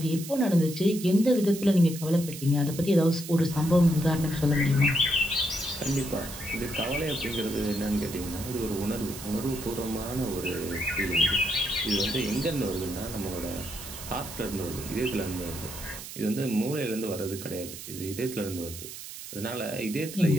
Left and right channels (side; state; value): right; noise; hiss, 11 dB below the sound